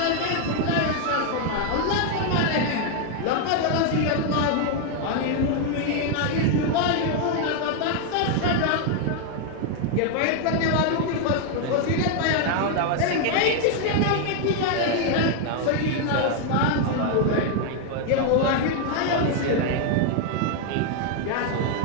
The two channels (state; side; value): different; both; correlation 0.00